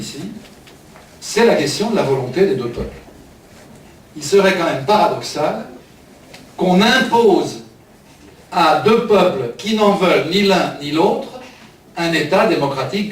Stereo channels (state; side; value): identical; both; correlation 1.00